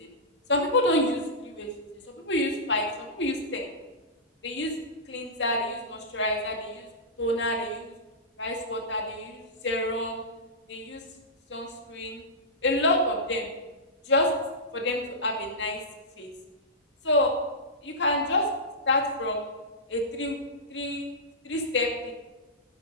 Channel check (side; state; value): both; normal; correlation -0.14